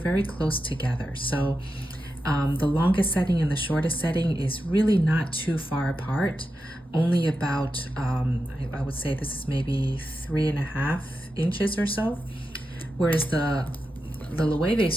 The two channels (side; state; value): both; normal; correlation 0.89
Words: close together. So the longest setting and the shortest setting is really not too far apart, only about, I would say this is maybe 3.5 inches or so. Whereas the Loewe